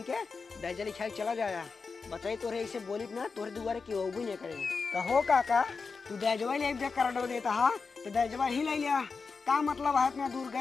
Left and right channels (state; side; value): quieter; right; 4.8 dB